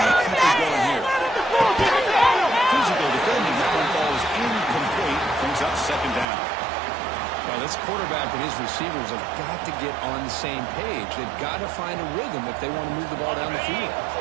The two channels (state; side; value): drops out; left; at 6.2 s